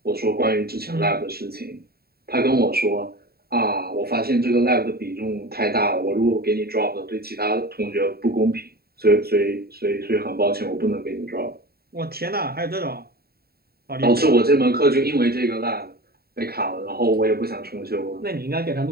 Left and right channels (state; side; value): late; left; 0.45 ms